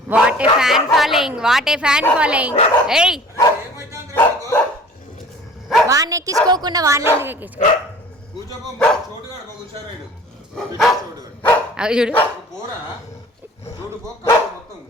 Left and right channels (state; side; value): normal; both; correlation 0.47